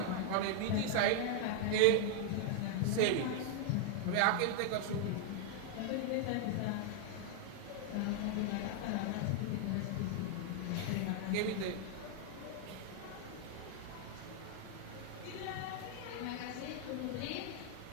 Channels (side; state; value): both; different; correlation 0.00